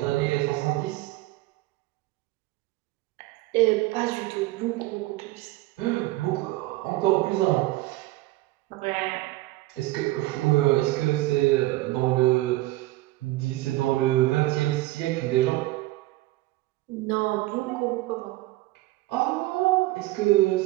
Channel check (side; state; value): left; quieter; 18.5 dB